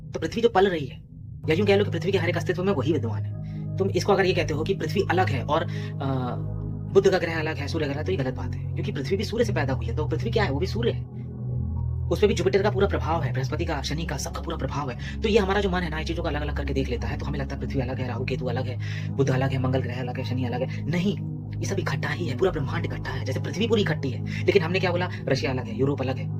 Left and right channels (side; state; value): both; identical; correlation 1.00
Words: तो पृथ्वी जो पल रही है, या यूं कह लो कि पृथ्वी के हर एक अस्तित्व में वही विद्वान है। तुम इसको अगर ये कहते हो कि पृथ्वी अलग है और बुध का ग्रह अलग है, सूर्य ग्रह, तो ये गलत बात है, क्योंकि पृथ्वी भी सूर्य से पैदा हुई है। तो पृथ्वी क्या है? वो भी सूर्य है, उसपे भी जुपिटर का पूरा प्रभाव है, बृहस्पति का, शनि का, सबका पूरा प्रभाव है। तो ये हमारा जो मन है ना, ये चीजों को अलग अलग करके देख लेता है, तो हमें लगता है पृथ्वी अलग है, राहु केतु अलग है, बुध अलग है, मंगल ग्रह अलग है, शनि अलग है। नहीं, ये सब इकट्ठा ही है, पूरा ब्रह्मांड इकट्ठा है। जैसे पृथ्वी पूरी इकट्ठी है, लेकिन हमने क्या बोला? रशिया अलग है, यूरोप अलग है,